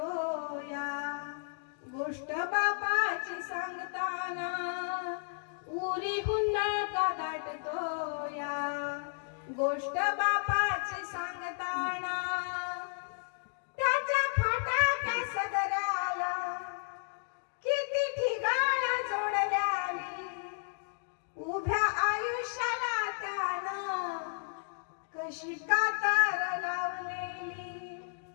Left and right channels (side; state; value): right; silent; digital silence